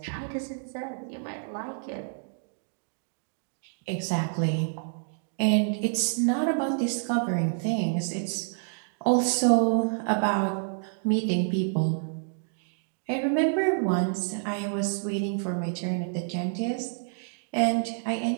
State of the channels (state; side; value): silent; left; digital silence